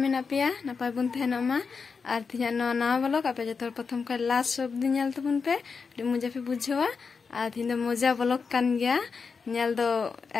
में पेया नपाय बन तहनोमा और तीन नवा ब्लॉग आप जो प्रथम खा लास्ट सब दिन नेल तबन पे मजा पे बुझेवा और तीन मजा ब्लॉग कान गया नेल दो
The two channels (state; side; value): quieter; right; 5.3 dB